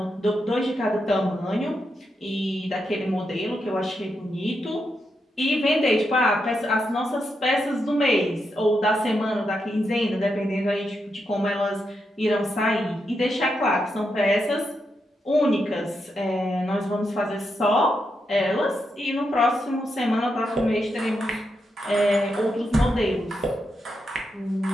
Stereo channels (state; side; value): normal; both; correlation 0.84